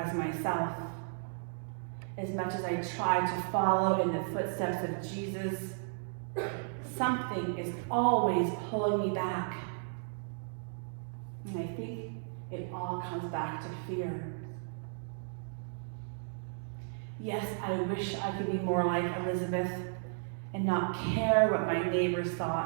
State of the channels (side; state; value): left; silent; 55 dB below the other